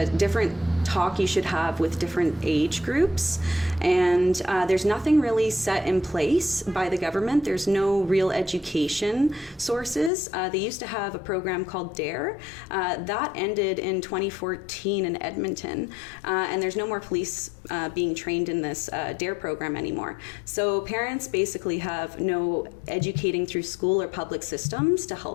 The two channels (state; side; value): drops out; right; at 10.1 s